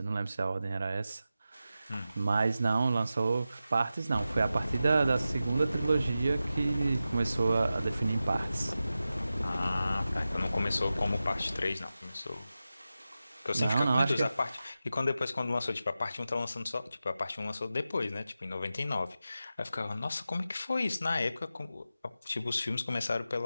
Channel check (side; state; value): both; inverted; correlation -0.93